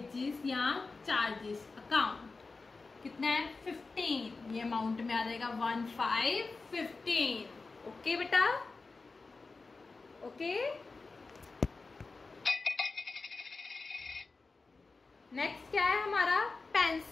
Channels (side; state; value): right; quieter; 4.0 dB